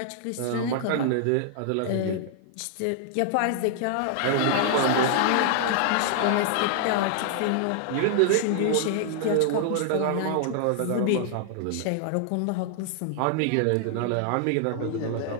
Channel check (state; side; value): different; both; correlation -0.01